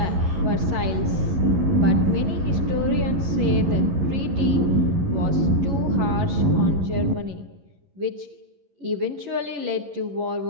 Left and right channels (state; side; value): late; left; 11 ms